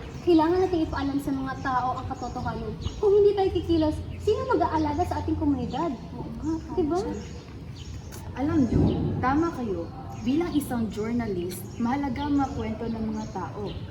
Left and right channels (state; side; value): identical; both; correlation 1.00